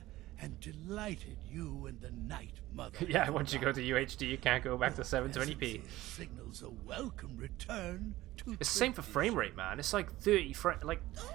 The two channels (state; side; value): quieter; left; 16.8 dB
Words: am delighted you and the Night Mother... Yeah, once you go to UHD, you can't go back to 720p. ...signals a welcome return to... It's the same for frame rate, man. It's like 30 frames. Like,